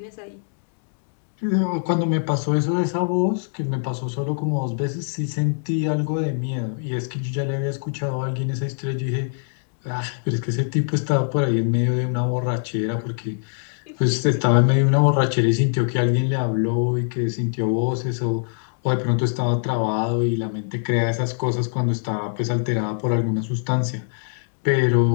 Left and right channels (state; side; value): silent; right; digital silence